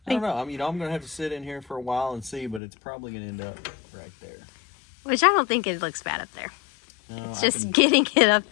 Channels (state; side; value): drops out; right; at 2.6 s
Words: I don't know. I mean, I'm going to have to sit in here for a while and see, but it's probably going to end up right there. Which I don't think it looks bad up there. No, it's just getting it up